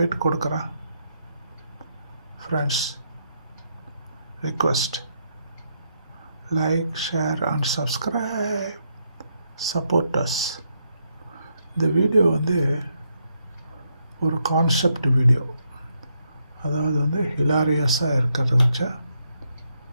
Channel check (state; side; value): inverted; both; correlation -0.78